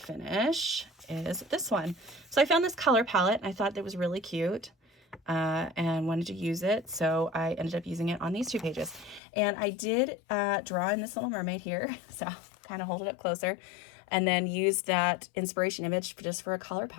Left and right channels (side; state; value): right; drops out; at 9.2 s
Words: is this one. So I found this color palette, and I thought that was really cute. And wanted to use it, so I ended up using it on these 2 pages. And I did draw in this little mermaid here, so I'll kind of hold it up closer, and then used that inspiration image just for a color